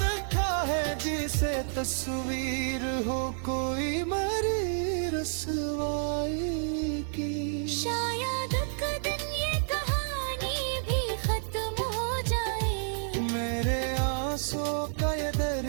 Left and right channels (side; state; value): left; silent; digital silence